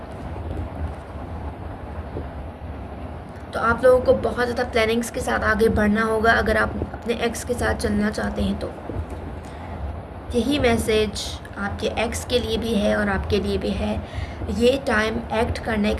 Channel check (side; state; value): both; identical; correlation 1.00